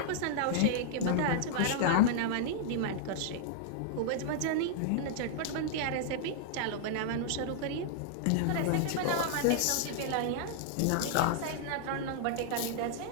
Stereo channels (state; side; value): different; both; correlation -0.01